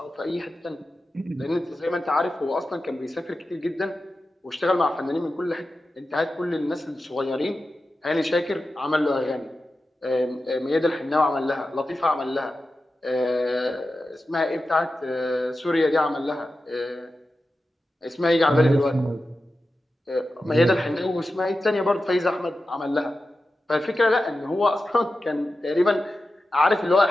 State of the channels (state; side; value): normal; both; correlation 0.92